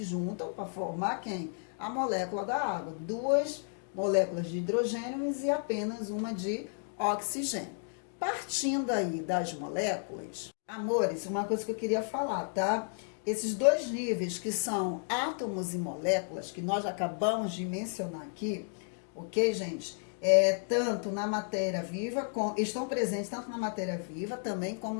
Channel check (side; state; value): right; silent; 56 dB below the other